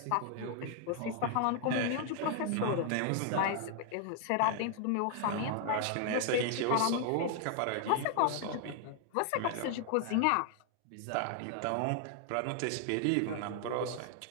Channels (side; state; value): both; different; correlation 0.00